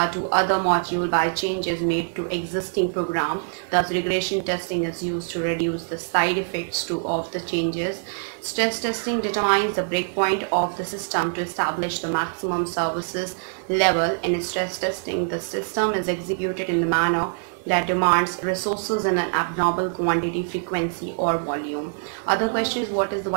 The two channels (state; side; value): silent; left; 62 dB below the other